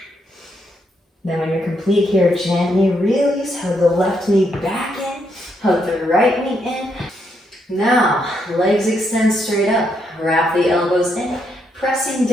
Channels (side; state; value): both; normal; correlation 0.77